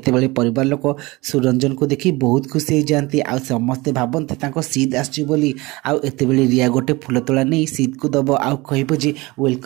परिवार लोक सुरंजन को देखी बहुत खुशी हो जाती आ समस्ते भावती सीध आसुली आते रिया गोटे फुल तोड़ा नहीं सीध को दब आ कह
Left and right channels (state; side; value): quieter; left; 22.6 dB